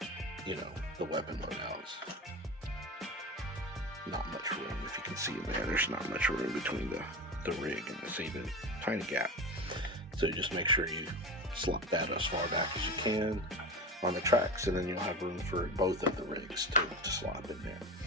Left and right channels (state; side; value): normal; both; correlation 0.26